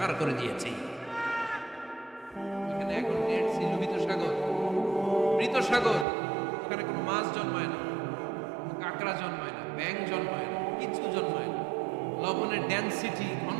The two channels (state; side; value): drops out; left; at 6.1 s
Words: করে দিয়েছি। এখানে এখন ডেড সি, লোহিত সাগর, মৃত সাগর। ওখানে কোনো মাছ জন্মায় না, কাঁকড়া জন্মায় না, ব্যাঙ জন্মায় না, কিছু জন্মায় না। লবণের ডেনসিটি,